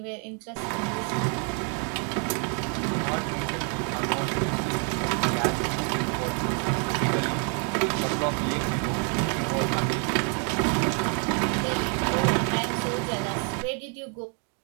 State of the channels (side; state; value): left; quieter; 40.0 dB